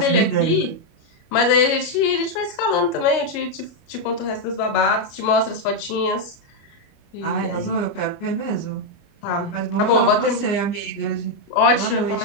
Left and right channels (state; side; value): late; right; 29 ms